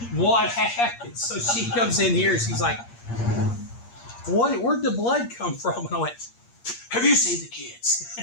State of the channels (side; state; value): right; late; 8.5 ms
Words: what happened? So she comes in here, she's like, where'd the blood come from? And I went, have you seen the kids?